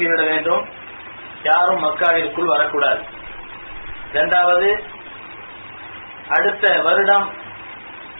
வேண்டும், யாரும் மக்காவிற்குள் வரக்கூடாது. இரண்டாவது, அடுத்த வருடம்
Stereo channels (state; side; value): inverted; both; correlation -1.00